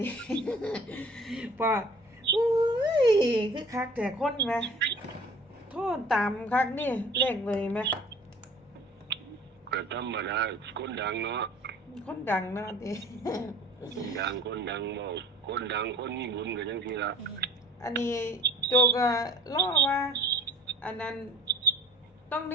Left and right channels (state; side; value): normal; both; correlation 0.47